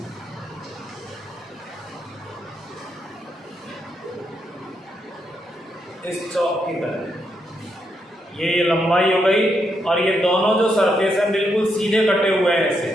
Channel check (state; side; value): normal; both; correlation 0.80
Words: इस चौक की तरह ये लंबाई हो गई, और ये दोनों जो सरफेस है बिल्कुल सीधे कटे हुए हैं ऐसे,